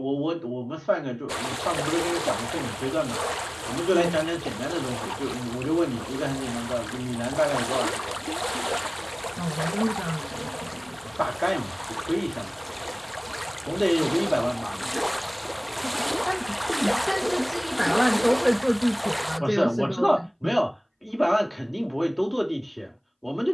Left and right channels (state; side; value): identical; both; correlation 1.00